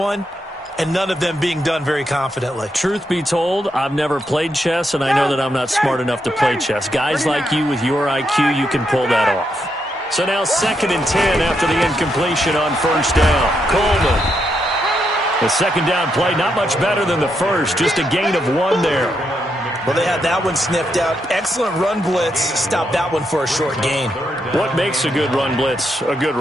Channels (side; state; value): both; normal; correlation 0.80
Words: and none of them being done very confidently. Truth be told, I've never played chess, and I know that I'm not smart enough to play chess. Guys like you with your IQ, you can pull that off. So now 2nd and 10 after the incompletion on first down. Coleman. The second down play, not much better than the first, just a gain of 1 there. Well, they had that one sniffed out. Excellent run blitz. Stopped that one for a short gain. What makes a good run blitz a good